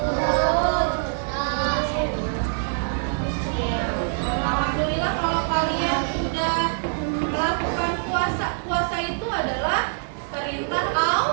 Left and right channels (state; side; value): silent; left; digital silence